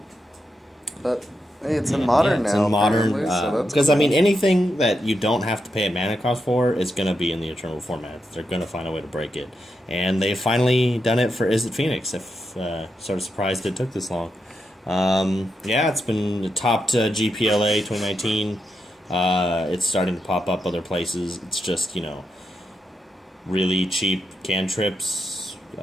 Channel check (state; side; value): normal; both; correlation 0.85